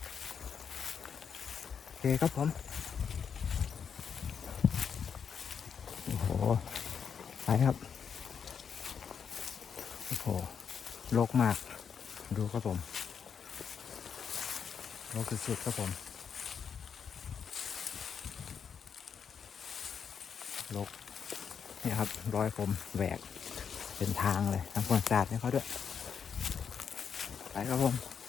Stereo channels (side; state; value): right; quieter; 7.0 dB